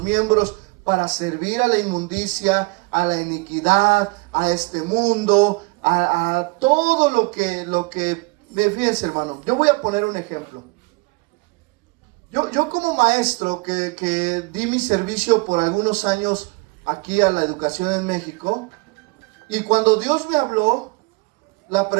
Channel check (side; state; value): left; quieter; 26.9 dB